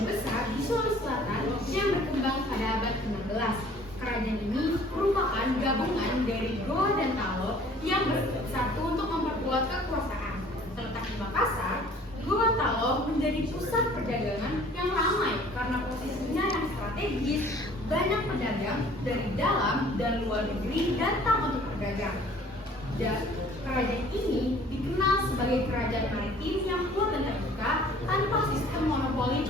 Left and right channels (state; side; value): normal; both; correlation 0.53